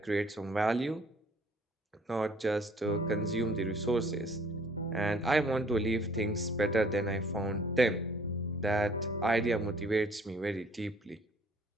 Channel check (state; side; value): normal; both; correlation 0.57